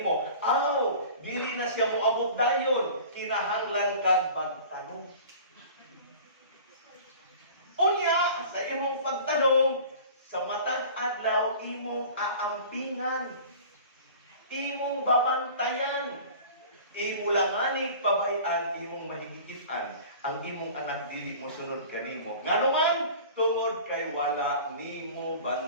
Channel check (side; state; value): both; inverted; correlation -0.42